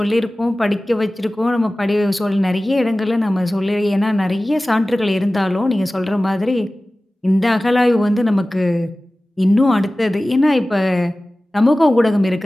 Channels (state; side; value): normal; both; correlation 0.97